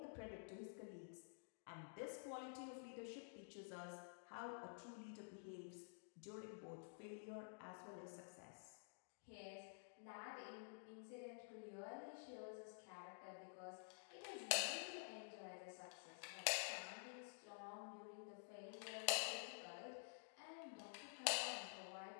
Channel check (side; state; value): right; silent; digital silence